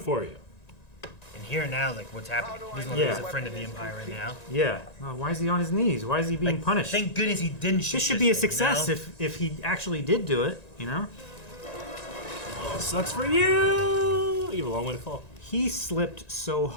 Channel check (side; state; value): right; late; 1.9 ms